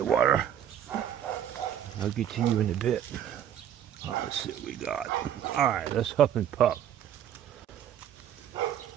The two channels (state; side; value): quieter; left; 10.0 dB